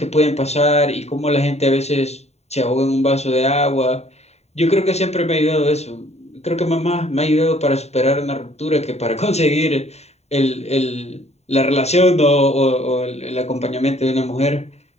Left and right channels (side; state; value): right; late; 0.31 ms